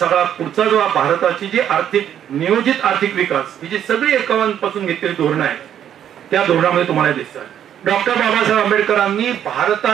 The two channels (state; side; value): quieter; left; 9.9 dB